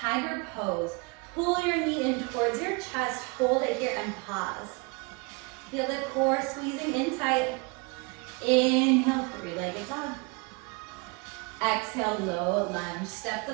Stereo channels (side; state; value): left; quieter; 29.7 dB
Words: pose. Pull your knee in towards your chest, hold it here and pause. Feel the core squeezing in tight. Inhale, three-legged dog. Exhale, low lunge. Step